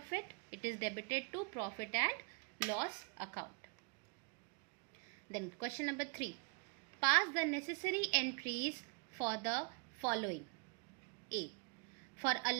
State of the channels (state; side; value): quieter; left; 34.8 dB